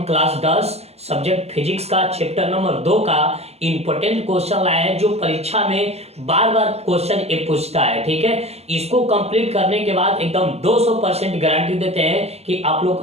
क्लास 10 सब्जेक्ट फिजिक्स का चैप्टर नंबर 2 का इंपॉर्टेंट क्वेश्चन लाए हैं, जो परीक्षा में बार बार क्वेश्चन ये पूछता है। ठीक है, इसको कंप्लीट करने के बाद एकदम 200% गारंटी देते हैं कि आप लोग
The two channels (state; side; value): late; left; 0.30 ms